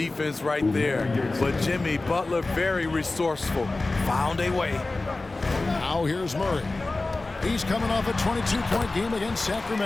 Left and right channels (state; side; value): quieter; right; 3.2 dB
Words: right there. But Jimmy Butler, very resourceful. Found a way. Now here's Murray. He's coming off a 22-point game against